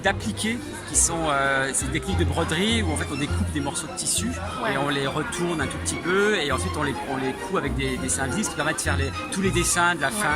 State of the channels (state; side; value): identical; both; correlation 1.00